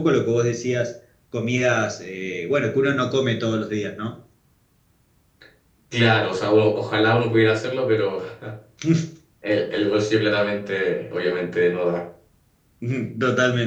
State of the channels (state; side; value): identical; both; correlation 1.00